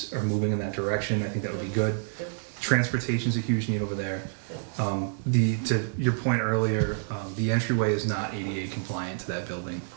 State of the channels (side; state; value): left; silent; digital silence